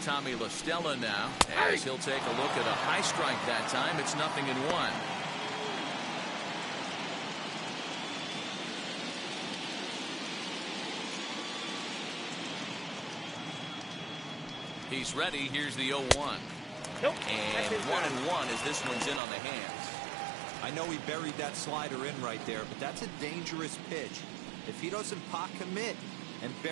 Tommy La Stella now, as he'll take a look at a high strike that time. It's 0-1. He's ready. Here's the 0-1. Nope. And 1-1 as this one's in on the hands. I know he buried that slider in right there, but that's a dangerous pitch. If he doesn't pot commit and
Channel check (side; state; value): left; drops out; at 19.2 s